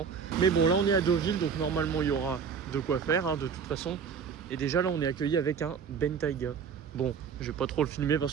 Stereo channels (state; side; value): quieter; left; 6.5 dB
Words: Mais bon, là on est à Deauville, donc normalement il y aura de quoi faire hein, de toute façon. Et déjà là on est accueilli avec un Bentayga. Bon, je vais pas trop le filmer